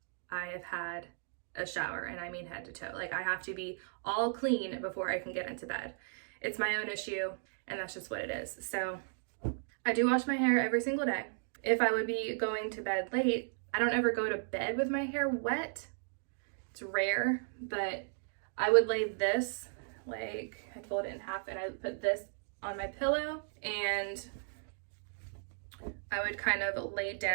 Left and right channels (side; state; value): left; silent; digital silence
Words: I have had a shower, and I mean head to toe. Like, I have to be all clean before I can get into bed. It's my own issue, and that's just what it is. So I do wash my hair every single day. If I would be going to bed late, I don't ever go to bed with my hair wet. It's rare, but I would lay this, like, I'd fold it in half and I would put this on my pillow, and I would kind of lay